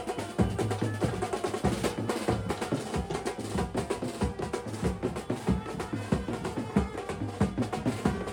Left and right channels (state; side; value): identical; both; correlation 1.00